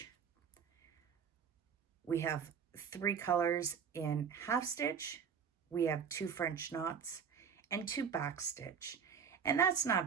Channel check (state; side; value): quieter; left; 7.0 dB